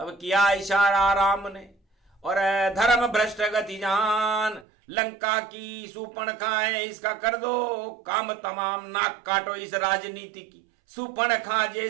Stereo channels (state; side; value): drops out; left; at 4.7 s